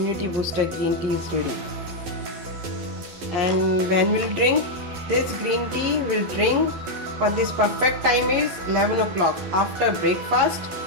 booster green tea is ready. And when we'll drink this green tea, we'll drink for this perfect time is 11 o'clock after breakfast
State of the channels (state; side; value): late; left; 12 ms